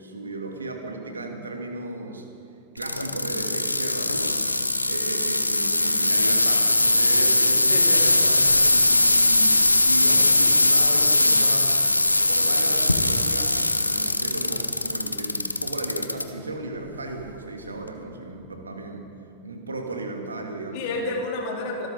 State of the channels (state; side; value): inverted; both; correlation -0.93